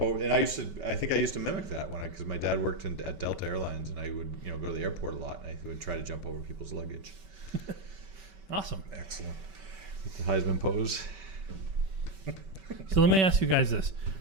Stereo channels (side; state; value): left; late; 5.2 ms